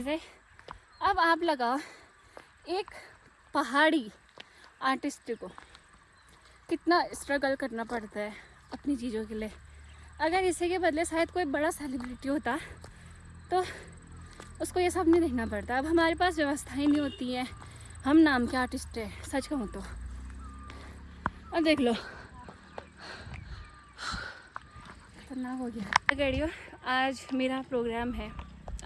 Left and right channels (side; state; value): both; identical; correlation 1.00